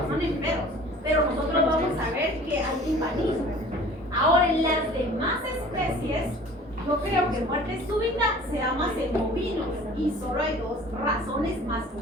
en perros. Pero nosotros vamos a ver que hay timpanismo. Ahora, en las demás especies, yo creo que muerte súbita se da más en bovinos y solo hay dos razones más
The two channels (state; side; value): normal; both; correlation 0.46